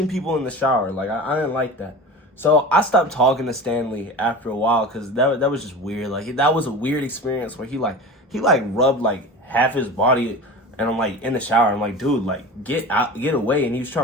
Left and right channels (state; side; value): normal; both; correlation 0.33